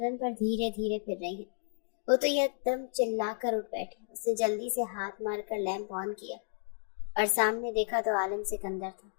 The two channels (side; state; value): right; silent; digital silence